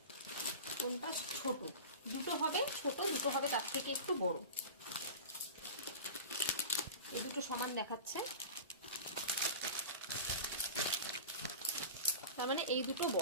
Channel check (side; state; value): both; inverted; correlation -0.32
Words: কোনটা ছোট। 2টো হবে ছোট, 2টো হবে তার থেকে একটু বড়। এই 2টো সমান দেখাচ্ছে, তার মানে এই 2টো